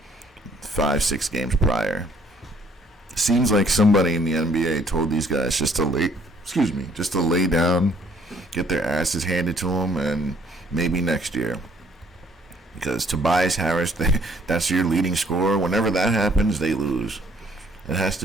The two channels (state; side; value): normal; both; correlation 0.62